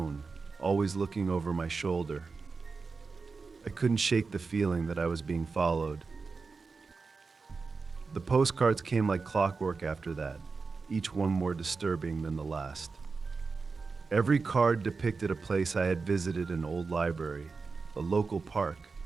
always looking over my shoulder. I couldn't shake the feeling that I was being followed. The postcards came like clockwork after that, each one more disturbing than the last. Every card depicted a place I had visited: an old library, a local park,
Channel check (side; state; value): left; quieter; 4.5 dB